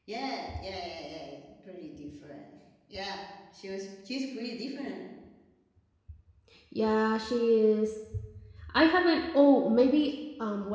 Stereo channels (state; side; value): identical; both; correlation 1.00